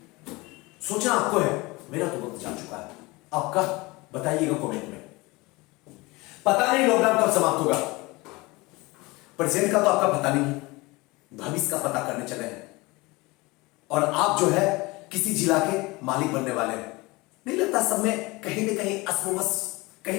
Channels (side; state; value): right; quieter; 23.3 dB